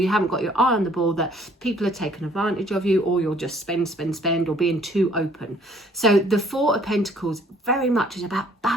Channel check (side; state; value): both; normal; correlation 0.59